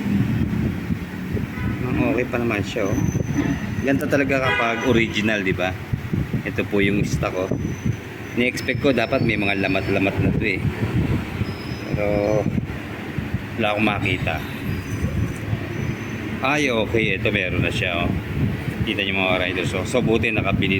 Okay pa naman siya, oh. Ganito talaga kapag original, di ba? Ito po yung stock, oh. Ni-expect ko dapat may mga lamat-lamat na to, eh. Pero wala akong makita. Ay, okay, ito meron na siya, oh. Kita niyo mga riders, so buti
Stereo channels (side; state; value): both; identical; correlation 1.00